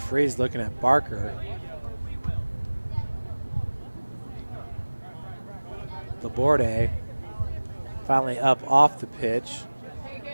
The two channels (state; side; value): inverted; both; correlation -1.00